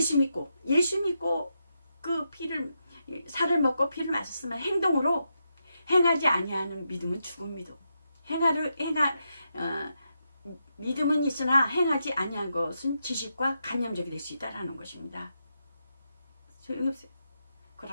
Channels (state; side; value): inverted; both; correlation -0.84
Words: 믿고 그 피를, 살을 먹고 피를 마셨으면 행동으로 행하지 아니하는 믿음은 죽은 믿음. 믿음은 있으나 행하지 아니한 것은 지식과 관념적이 될 수 있다라는 것입니다. 소용이 없어요.